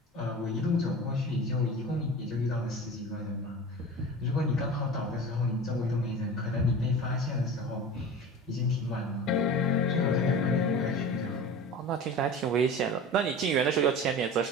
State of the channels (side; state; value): both; normal; correlation 0.35